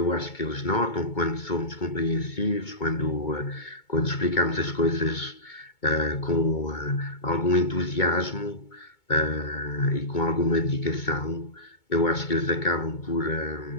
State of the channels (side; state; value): right; late; 2.2 ms